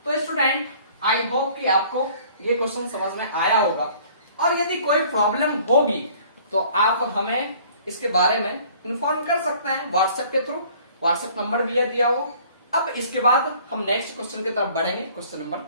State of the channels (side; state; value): both; inverted; correlation -0.53